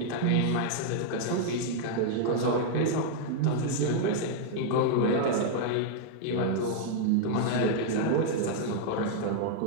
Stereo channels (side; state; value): both; different; correlation 0.00